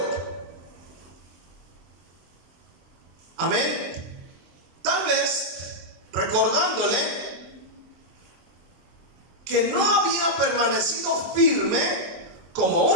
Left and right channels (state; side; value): late; left; 24 ms